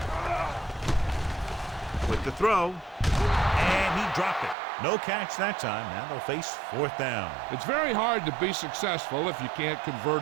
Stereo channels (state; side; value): drops out; left; at 4.5 s